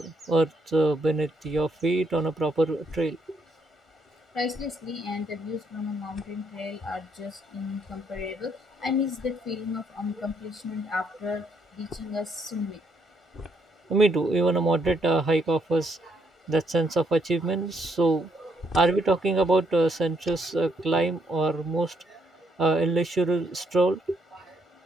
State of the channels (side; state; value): both; normal; correlation 0.73